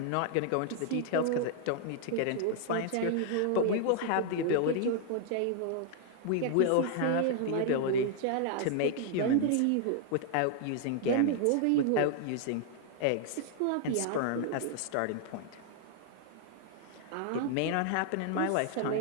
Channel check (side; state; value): both; different; correlation 0.00